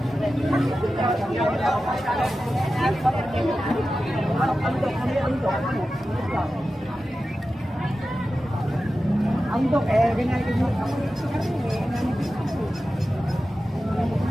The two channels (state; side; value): normal; both; correlation 0.93